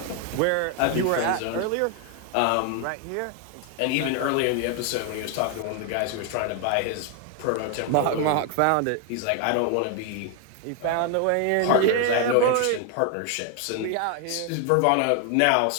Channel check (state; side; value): different; both; correlation 0.01